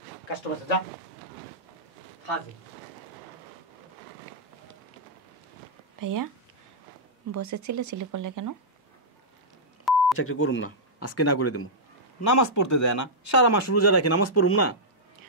ভাইয়া বসে চিল্লাচিল্লি করলে কেন? চাকরি করুম না, আজকে না করে দেবো। নামাজ পড়তে দেয় না, সারা মাস রোজা রাখি, নামাজ পড়ুম না।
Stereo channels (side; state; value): both; normal; correlation -0.10